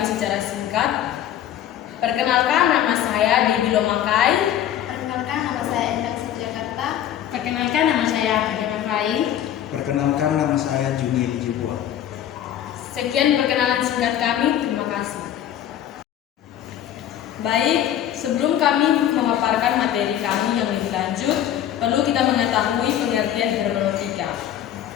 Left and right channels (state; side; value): quieter; right; 11.0 dB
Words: secara singkat. Perkenalkan, nama saya Debbie Lomakai. Perkenalkan, nama saya Endang Jakarta. Perkenalkan, nama saya Fadina Fai. Perkenalkan, nama saya Juni Lijibua. Sekian perkenalan singkat kami, terima kasih. Baik, sebelum kami memaparkan materi kami yang lebih lanjut, perlu kita mengetahui pengertian hermeneutika.